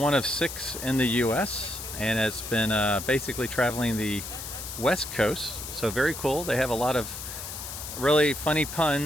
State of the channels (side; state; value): left; noise; hiss, 9 dB below the sound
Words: of 6 in the U.S. and it's been basically traveling the West Coast. So very cool. They have a lot of really funny